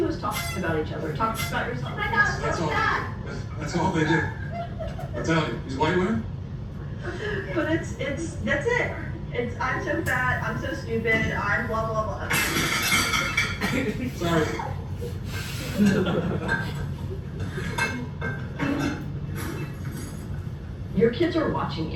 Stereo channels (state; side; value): identical; both; correlation 1.00